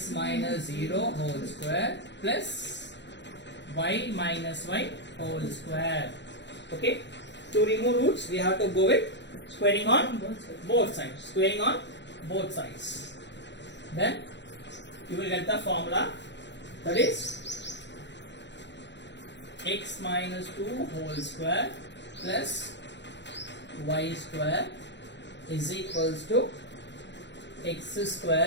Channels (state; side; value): late; right; 0.52 ms